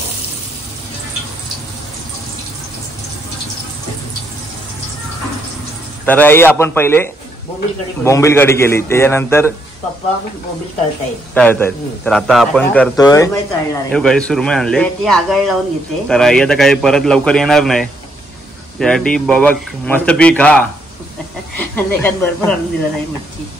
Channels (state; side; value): normal; both; correlation 0.74